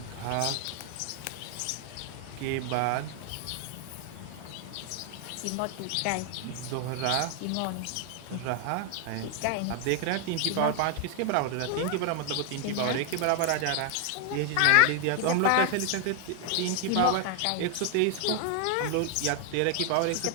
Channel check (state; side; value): different; both; correlation 0.00